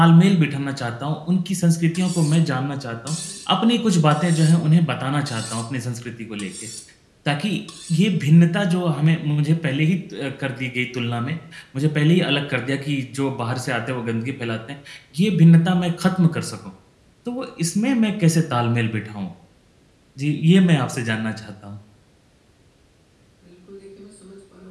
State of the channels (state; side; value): identical; both; correlation 1.00